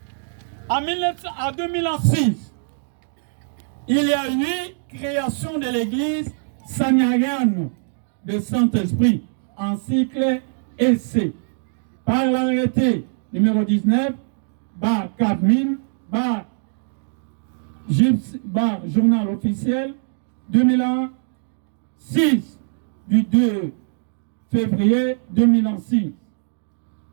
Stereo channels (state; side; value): silent; left; 64 dB below the other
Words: En 2006, il y a eu création de l'église Sanyariane de Saint-Esprit en cycle essai par l'arrêté numéro 19/4000/journal officiel 2006 du 2 février 2006.